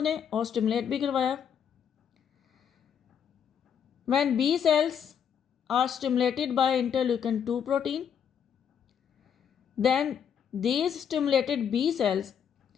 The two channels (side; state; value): right; quieter; 7.9 dB